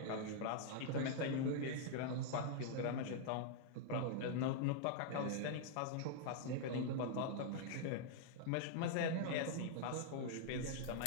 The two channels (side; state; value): both; different; correlation -0.01